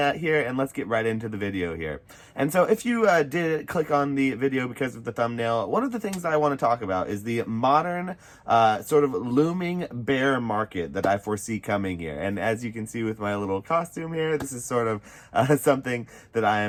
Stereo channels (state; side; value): identical; both; correlation 1.00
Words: and let's get right into the video here. And so if you did click on the video because of the thumbnail, one of the things that I want to talk about is the modern sort of looming bear market that I foresee coming here. And as you can see with my little costume here, this is sort of something that I